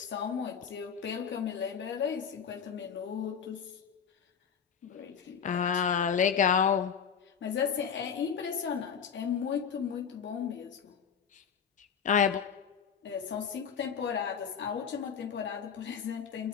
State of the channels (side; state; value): right; quieter; 7.2 dB